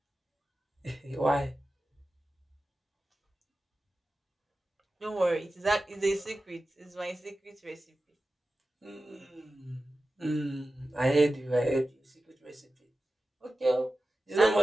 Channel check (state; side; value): normal; both; correlation 0.94